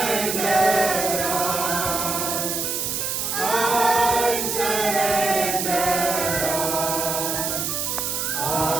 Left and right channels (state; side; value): noise; right; hiss, 1 dB below the sound